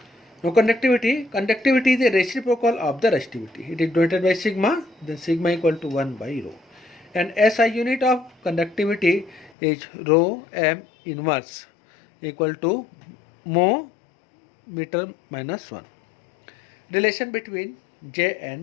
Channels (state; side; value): drops out; right; at 9.5 s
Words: Now conductivity is a reciprocal of the resistivity. It is denoted by sigma, then sigma equal to 1 by rho. And SI unit of conductivity is rho m inverse equal to mho meter minus 1. Relation between J